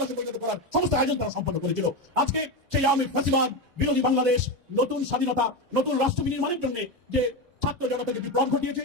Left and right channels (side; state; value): both; normal; correlation 0.16